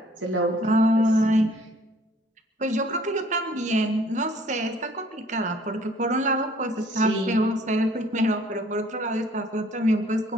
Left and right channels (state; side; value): normal; both; correlation 0.58